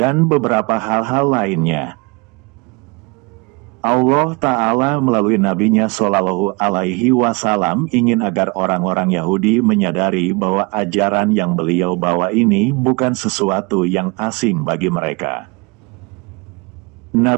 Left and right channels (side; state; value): left; quieter; 28.4 dB